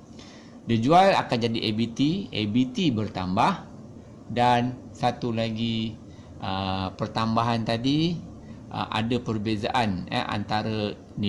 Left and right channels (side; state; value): both; identical; correlation 1.00